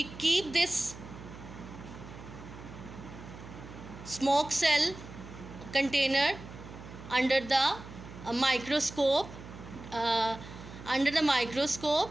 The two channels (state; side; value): noise; right; hum, 14 dB below the sound